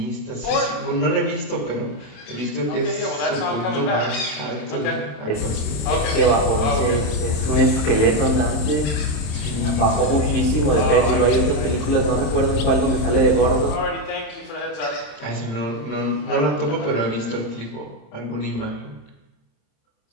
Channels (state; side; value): late; right; 27 ms